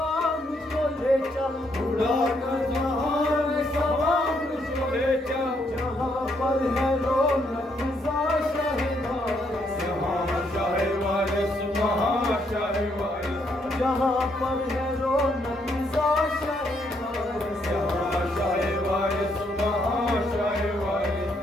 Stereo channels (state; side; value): normal; both; correlation 0.73